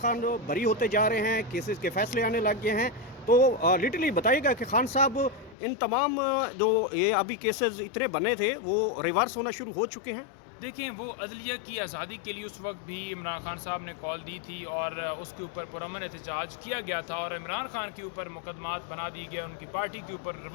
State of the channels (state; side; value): drops out; right; at 5.6 s